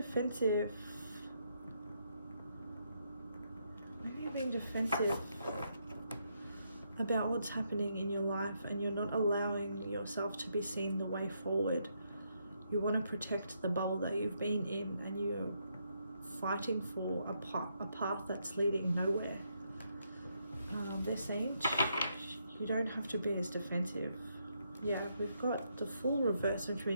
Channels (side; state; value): both; inverted; correlation -0.77